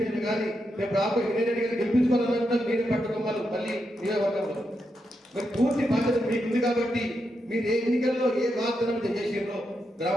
కానీ రేపు రాబోయే వినయ్ రెడ్డి గారు గెలిపించుకోవాలన్నా మీరే పట్టుకోవాలి మళ్ళీ నియోజకవర్గంలో. మరి పూర్తి బాధ్యత మీకు ఉంది కాబట్టి మీరు ఏ ఎన్నికల్లో ఏ వాగ్దానం చేసిండ్రో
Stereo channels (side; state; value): both; normal; correlation 0.84